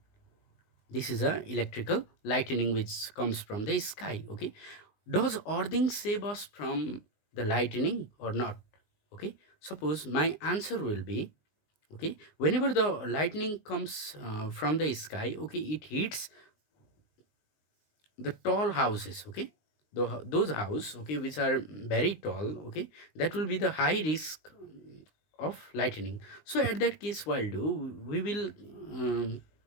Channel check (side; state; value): right; late; 19 ms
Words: this is a electrical lightning which comes from the sky, okay, does earthing save us from the lightning or not, okay. Suppose my answer will be, okay, whenever the lightning comes from the sky, okay, it hits the tall houses, okay, those house, okay, which are very tall, okay, that will be the high risk of lightning. So at that case, while do we will